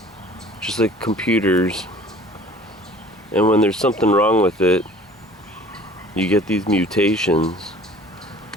just like computers. And when there's something wrong with it, you get these mutations.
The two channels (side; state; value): both; normal; correlation 0.48